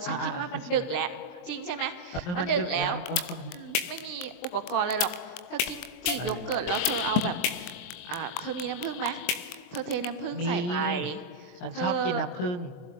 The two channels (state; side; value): late; right; 23 ms